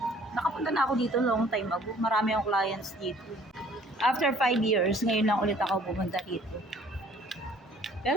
Nakapunta na ako dito long time ago. Marami akong clients dito. After 5 years, ngayon lang ulit ako pumunta dito.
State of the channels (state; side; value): normal; both; correlation 0.56